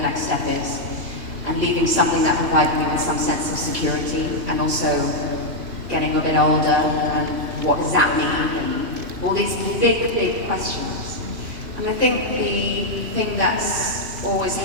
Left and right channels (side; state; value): left; late; 2.8 ms